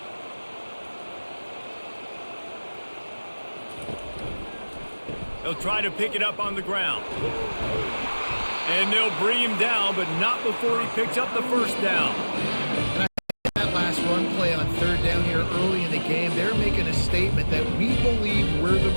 They'll try to pick it up on the ground. And they'll bring him down, but not before he picks up the first down. And I think that last run play on 3rd down here early in the game, they're making a statement that we believe we're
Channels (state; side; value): inverted; both; correlation -1.00